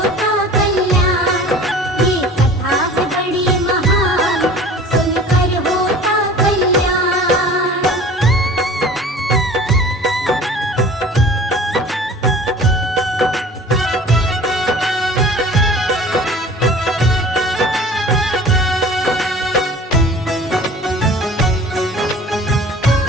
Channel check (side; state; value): both; normal; correlation 0.44